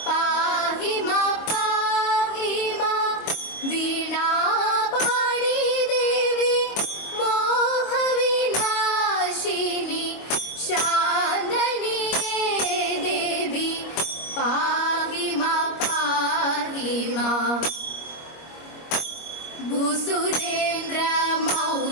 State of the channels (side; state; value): right; late; 25 ms